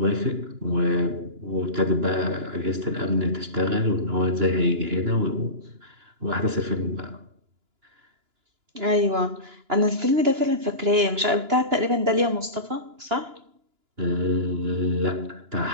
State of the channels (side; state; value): left; late; 2.9 ms